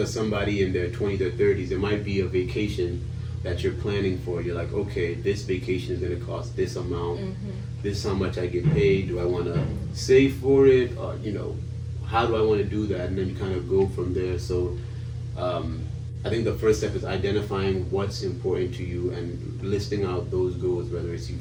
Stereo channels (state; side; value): identical; both; correlation 1.00